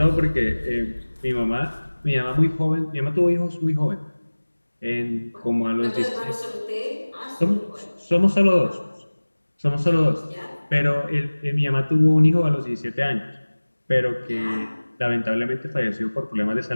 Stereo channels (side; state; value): both; inverted; correlation -1.00